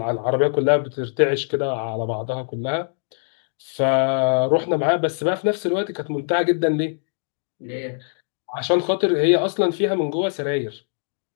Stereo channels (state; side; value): silent; right; digital silence